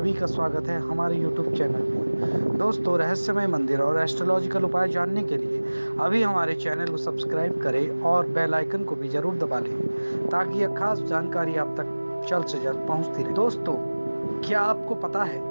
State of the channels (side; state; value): both; inverted; correlation -1.00